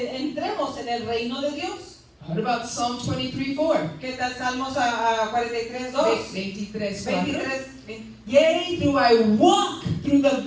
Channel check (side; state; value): both; identical; correlation 1.00